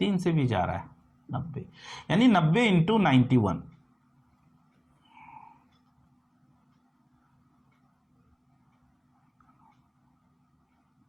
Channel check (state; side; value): identical; both; correlation 1.00